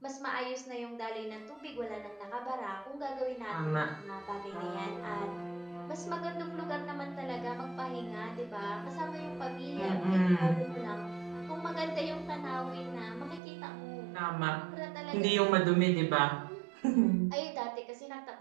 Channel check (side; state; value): left; drops out; at 13.4 s